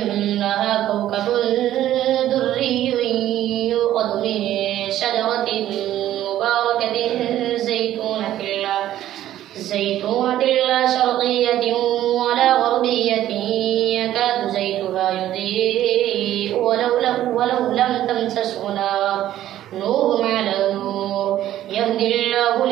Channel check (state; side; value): quieter; left; 12.8 dB